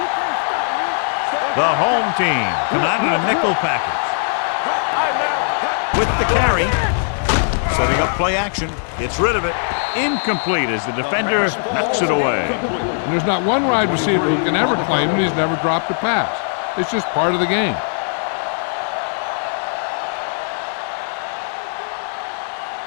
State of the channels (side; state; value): right; silent; 66 dB below the other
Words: can't stop me. The home team come out in a nickel package. With the carry, setting up play action, gets rid of it. Incomplete as the defender knocks it away. And there's not one wide receiver who can ever claim that he's never dropped a pass. It's just part of the game.